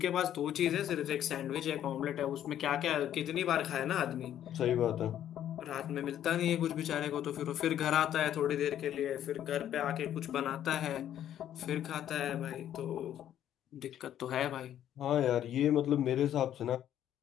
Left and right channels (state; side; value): quieter; right; 10.9 dB